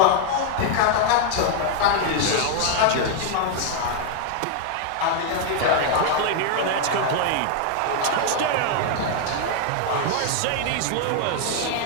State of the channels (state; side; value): different; both; correlation 0.00